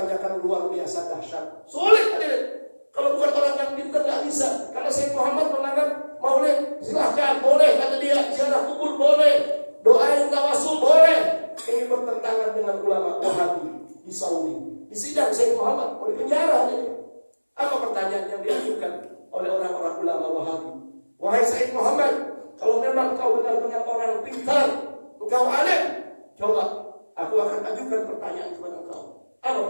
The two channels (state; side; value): inverted; both; correlation -1.00